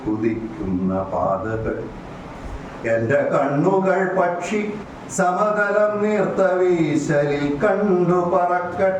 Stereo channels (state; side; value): identical; both; correlation 1.00